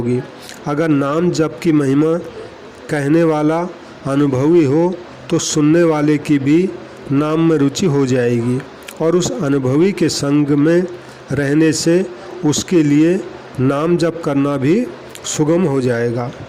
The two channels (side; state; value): both; identical; correlation 1.00